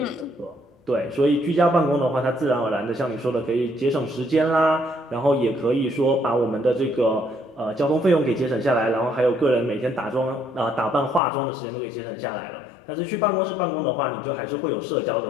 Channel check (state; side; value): drops out; right; at 11.2 s